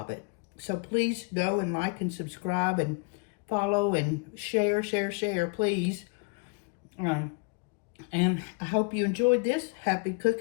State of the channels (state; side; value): quieter; right; 33.0 dB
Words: So please go and like and subscribe and follow and share, please. And I hope you enjoyed this. Happy